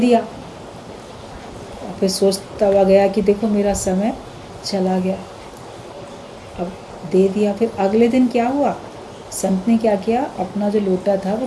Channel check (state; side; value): identical; both; correlation 1.00